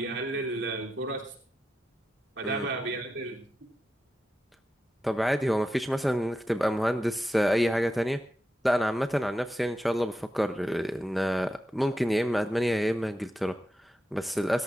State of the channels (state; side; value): normal; both; correlation 0.89